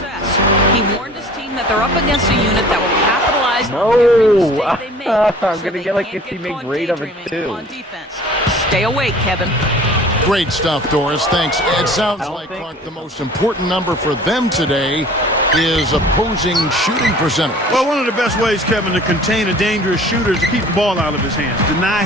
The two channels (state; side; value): normal; both; correlation 0.47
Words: He warned his team that they're up against a unit that will capitalize on every mistake they make. I'm going to get like a teammate grade of it too. On defense. Stay awake, Kevin. Great stuff, Doris. Thanks. It sounds like, Clark, the most important number for them today is opposing shooting percentage. Well, one of the best ways, Kevin, to contain a dangerous shooter is to keep the ball out of his hands. Deny